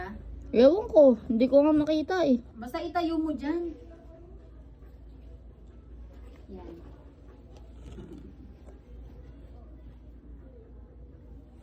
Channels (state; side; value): identical; both; correlation 1.00